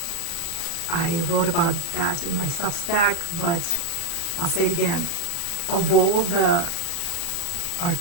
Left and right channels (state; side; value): late; right; 29 ms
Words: I wrote about that in my Substack, but I'll say it again. Of all the